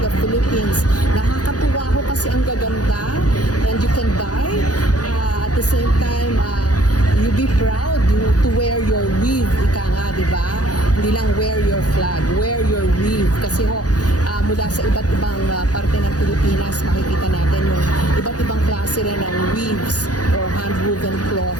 Philippines. Nakakatuwa ko kasi ang gaganda, and you can buy at the same time you be proud to wear your weave, ika nga, di ba? Hindi lang wear your flag, wear your weave. Kasi mula sa iba't ibang parte ng Pilipinas, makikita natin yung iba't ibang klase rin ng weaves or hand-woven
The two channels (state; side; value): late; right; 0.68 ms